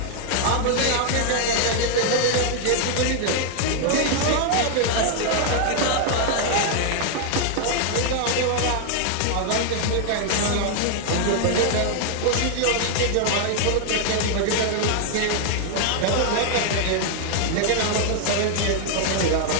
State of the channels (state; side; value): different; both; correlation 0.00